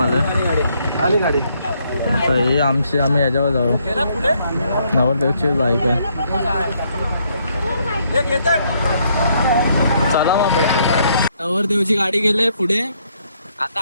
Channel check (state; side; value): inverted; both; correlation -0.71